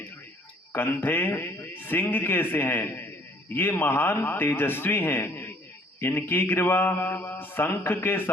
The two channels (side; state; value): both; normal; correlation 0.59